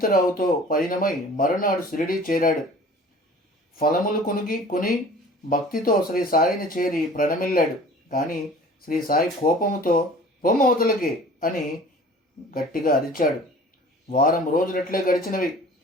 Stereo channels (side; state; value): both; normal; correlation 0.46